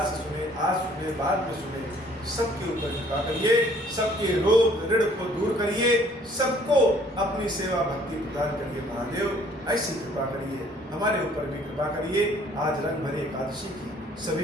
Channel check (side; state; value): both; normal; correlation 0.58